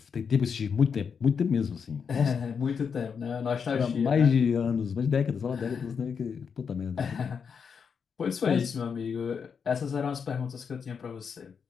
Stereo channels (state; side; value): quieter; right; 6.4 dB